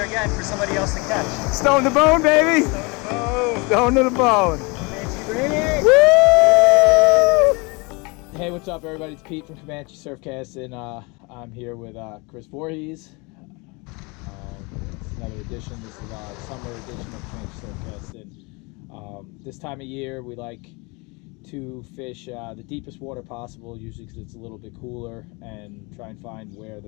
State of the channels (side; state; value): right; quieter; 28.1 dB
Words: again for somebody else to catch. Stone to bone, baby. Stone to the bone. Woo! Hey, what's up, everybody? It's Pete from Comanche Surfcsting. I'm here with Chris Voorhies. It's another edition. This is our summer edition of Comanche Surfcsting. This time of year, we like to fish the deepest water possible, usually because it's a little bit cooler, and try and find where the